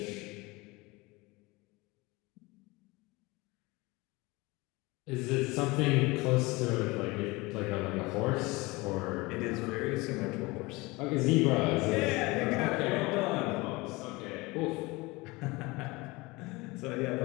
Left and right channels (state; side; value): quieter; right; 23.3 dB